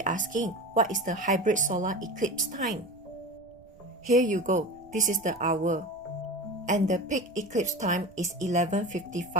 asking, what is the hybrid solar eclipse time? Here you go, this is the hour. And the peak eclipse time is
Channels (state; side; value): noise; right; rumble, 27 dB below the sound